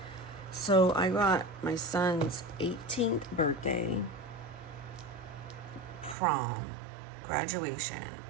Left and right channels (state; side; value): drops out; left; at 6.2 s